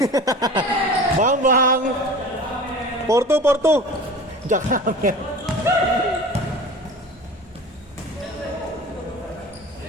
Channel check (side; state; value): both; normal; correlation 0.38